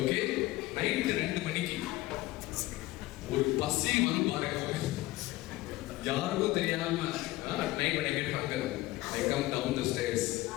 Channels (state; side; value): quieter; right; 18.5 dB